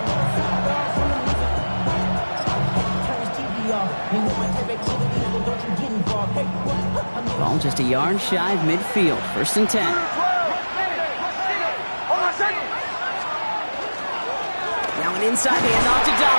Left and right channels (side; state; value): both; inverted; correlation -1.00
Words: Ball just a yard shy of midfield. 1st and 10. Now an inside handoff to